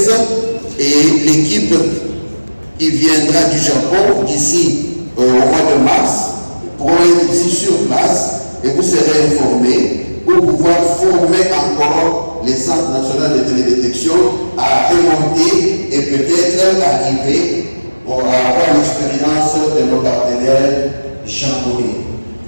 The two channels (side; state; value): both; inverted; correlation -1.00